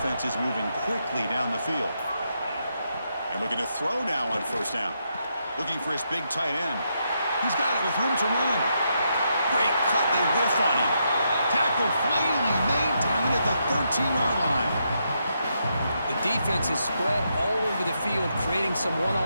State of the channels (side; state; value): both; inverted; correlation -0.80